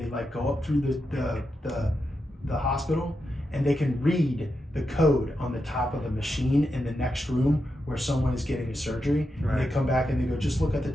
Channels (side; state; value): both; normal; correlation 0.87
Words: like go up through the hospital, and they can read the code on the top of the machine in the next room where someone is getting a surgery. Right. And they come back and they go, just look at the